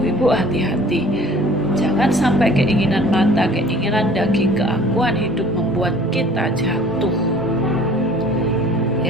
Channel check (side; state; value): both; normal; correlation 0.50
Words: hati-hati, jangan sampai keinginan mata, keinginan daging, keakuan hidup membuat kita jatuh.